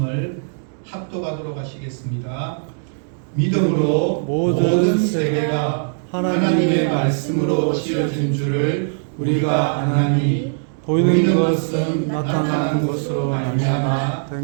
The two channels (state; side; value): silent; left; 66 dB below the other